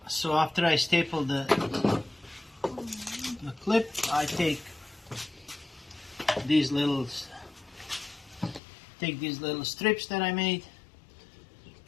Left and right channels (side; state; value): right; drops out; at 8.6 s